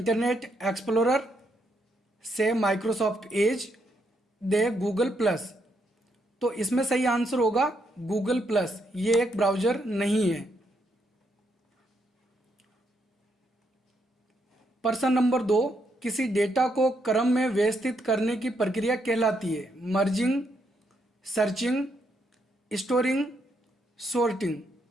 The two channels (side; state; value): both; normal; correlation 0.77